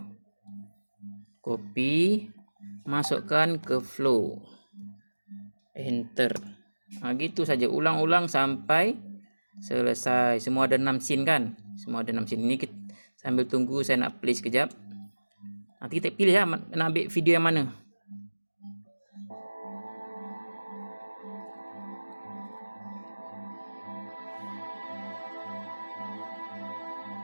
Copy, masukkan ke flow. Enter. Gitu saja, ulang-ulang sampai selesai. Semua ada 6 scene kan. Semua ada 6 scene. Ni kita sambil tunggu, saya nak play sekejap. Nanti kita pilih nak ambil video yang mana.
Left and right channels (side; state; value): both; inverted; correlation -1.00